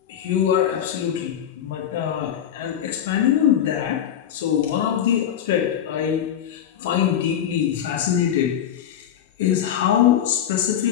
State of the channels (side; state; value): right; quieter; 9.9 dB